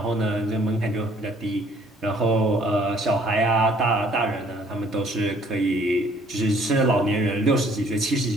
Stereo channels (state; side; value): normal; both; correlation 0.61